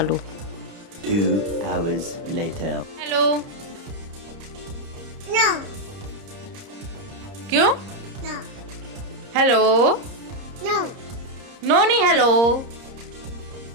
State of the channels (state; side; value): late; left; 30 ms